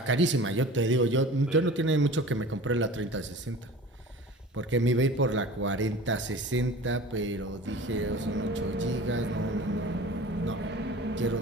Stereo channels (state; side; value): normal; both; correlation 0.39